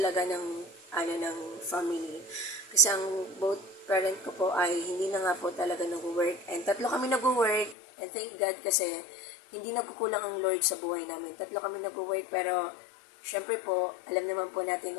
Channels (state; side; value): drops out; right; at 7.8 s